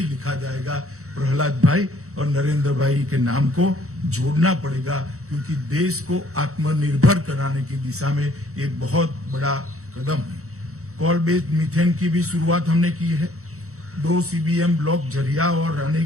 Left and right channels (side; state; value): left; late; 0.64 ms